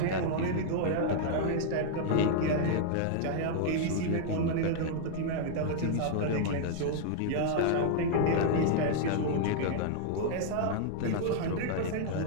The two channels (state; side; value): different; both; correlation -0.01